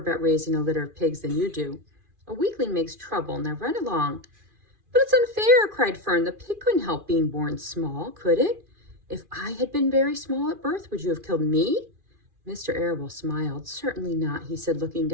raising a litter of pigs than you do. A weakling makes trouble. Now run along." "But it's unfair," cried Fern. "The pig couldn't help being born small, could it? If I had been very small at birth, would you have killed me?" Mr. Arable smiled. "Certainly not," he said, looking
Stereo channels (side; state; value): left; late; 2.4 ms